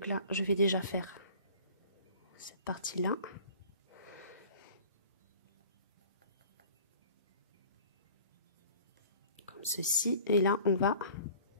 là, je vais déjà faire cette partie-là. Comme ceci. Et là, on va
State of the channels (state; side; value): inverted; both; correlation -0.47